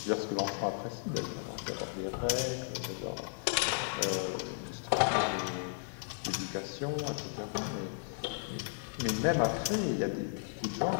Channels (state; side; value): silent; right; digital silence